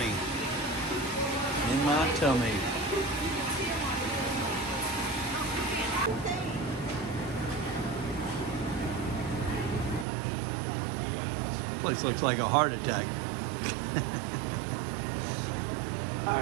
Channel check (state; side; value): drops out; left; at 10.1 s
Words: In my tummy. Place looks like a heart attack.